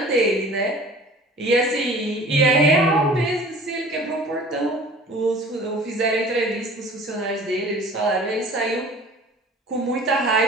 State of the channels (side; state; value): both; normal; correlation 0.46